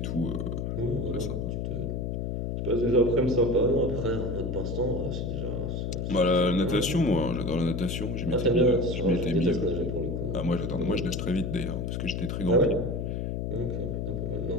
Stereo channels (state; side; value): noise; left; hum, 2 dB below the sound